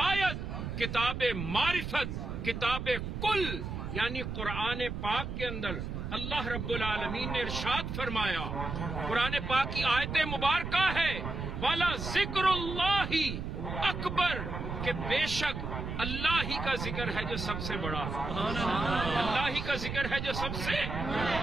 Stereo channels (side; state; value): right; noise; rumble, 5 dB below the sound